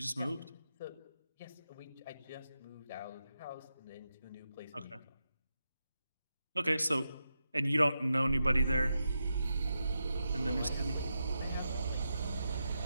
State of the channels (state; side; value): inverted; both; correlation -0.87